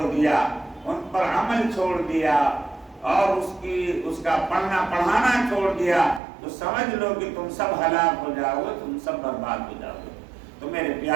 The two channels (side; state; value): left; drops out; at 6.2 s